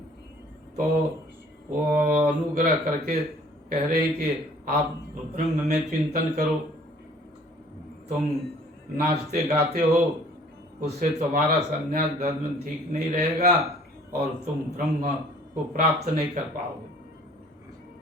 तो वो अनुग्रह करके कह रहे हैं कि आप ब्रह्म में चिंतन करो। तुम नाचते गाते हो, उससे तुम्हारा संन्यास धर्म ठीक नहीं रहेगा और तुम ब्रह्म को प्राप्त नहीं कर पाओगे,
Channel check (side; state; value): both; normal; correlation 0.54